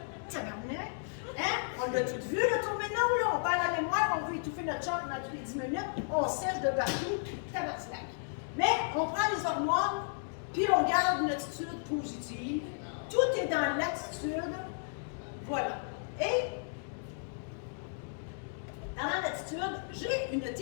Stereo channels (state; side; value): silent; right; digital silence